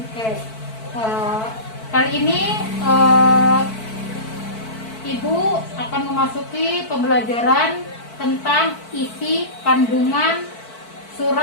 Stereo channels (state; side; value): late; right; 4.5 ms